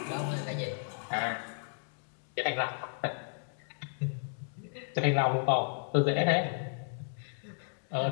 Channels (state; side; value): silent; right; digital silence